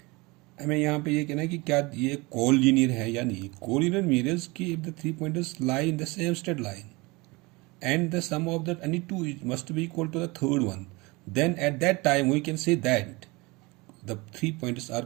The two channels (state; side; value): quieter; left; 24.6 dB